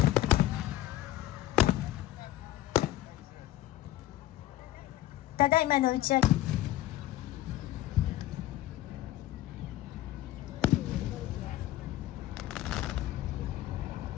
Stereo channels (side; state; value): right; quieter; 14.6 dB